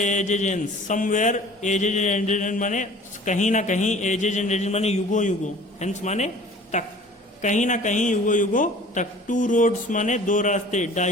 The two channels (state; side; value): normal; both; correlation 0.47